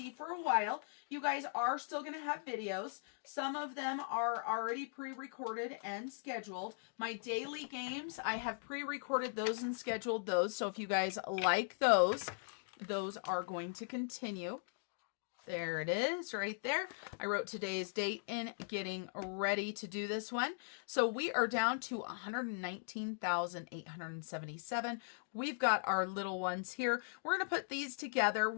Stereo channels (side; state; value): right; silent; digital silence